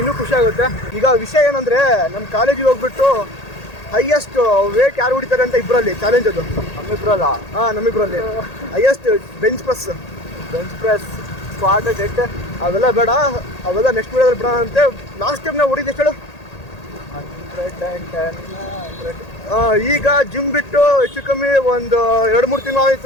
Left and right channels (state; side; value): late; right; 1.8 ms